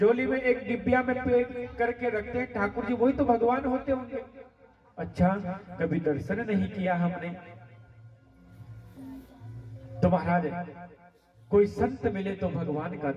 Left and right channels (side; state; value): both; identical; correlation 1.00